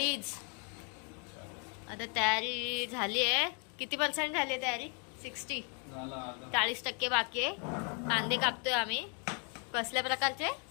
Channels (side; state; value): right; quieter; 37.8 dB